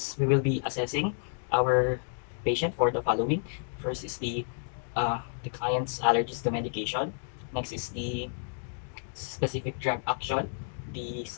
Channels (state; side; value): silent; right; 57 dB below the other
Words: we will be assessing our patient for the following. First is the client's allergies to medication. Next is the specific drug action, the